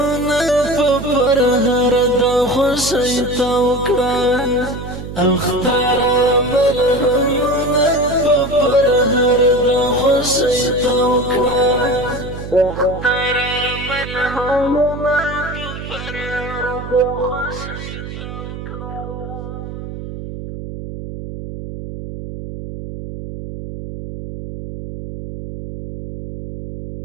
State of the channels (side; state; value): right; noise; hum, 9 dB below the sound